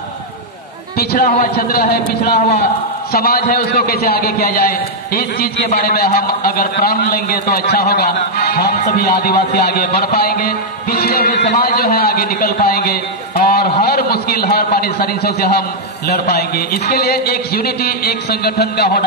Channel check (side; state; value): both; normal; correlation -0.04